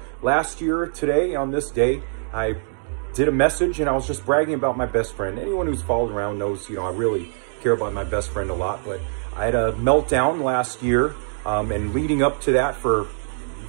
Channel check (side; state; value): left; silent; digital silence